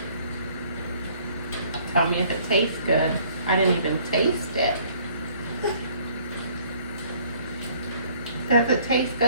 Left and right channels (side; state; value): both; inverted; correlation -0.59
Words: Tell me if it tastes good. I didn't even taste it. Does it taste